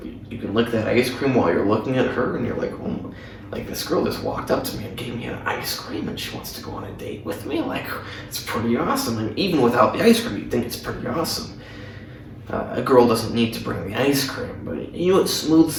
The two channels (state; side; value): identical; both; correlation 1.00